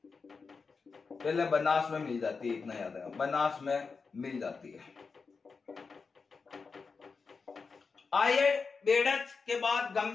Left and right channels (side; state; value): right; quieter; 4.9 dB